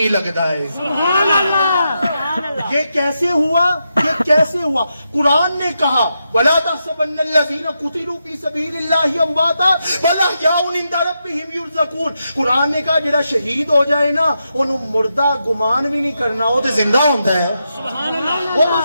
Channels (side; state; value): both; inverted; correlation -0.85